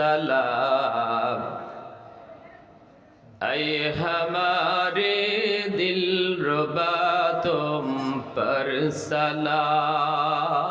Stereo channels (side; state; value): both; identical; correlation 1.00